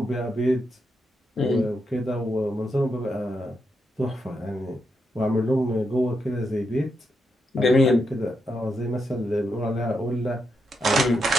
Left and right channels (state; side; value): normal; both; correlation 0.83